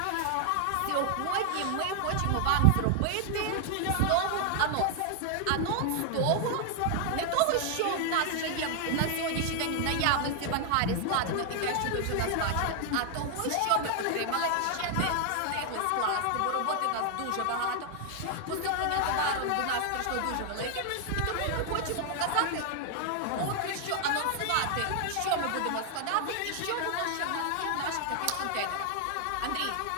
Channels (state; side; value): different; both; correlation 0.00